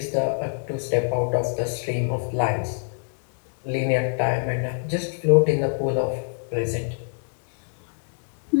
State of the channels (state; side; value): silent; right; 62 dB below the other